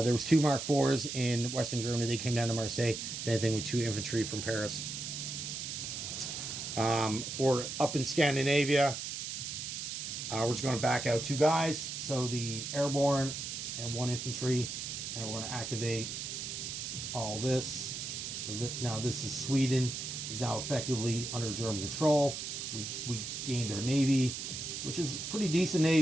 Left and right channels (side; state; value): right; noise; hiss, 5 dB below the sound